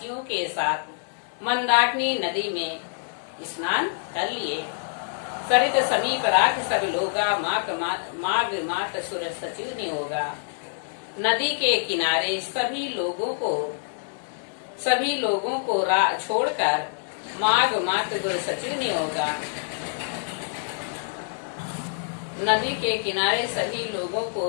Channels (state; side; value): silent; right; digital silence